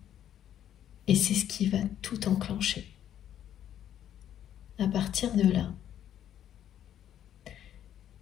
et c'est ce qui va tout enclencher. À partir de là,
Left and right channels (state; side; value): quieter; right; 10.6 dB